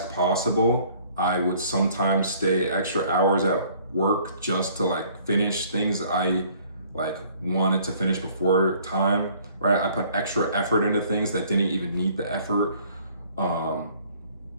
possible. I would sometimes stay extra hours at work just to like finish things I like wanted to finish before time, right? I put extra effort into things that didn't even need the effort. And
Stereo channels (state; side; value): inverted; both; correlation -0.58